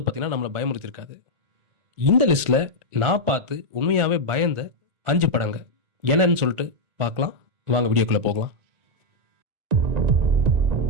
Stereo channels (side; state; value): left; late; 1.4 ms